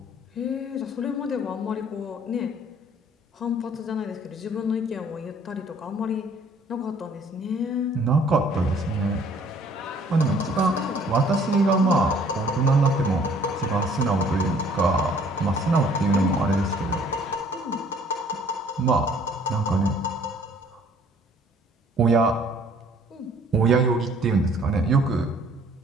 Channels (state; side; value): normal; both; correlation 0.57